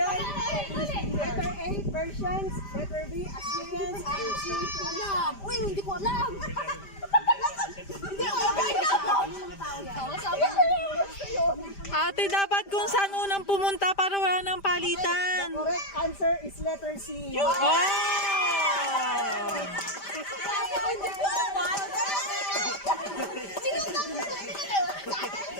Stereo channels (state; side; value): late; right; 5.0 ms